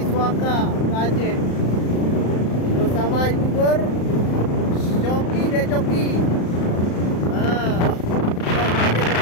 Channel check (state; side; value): late; right; 35 ms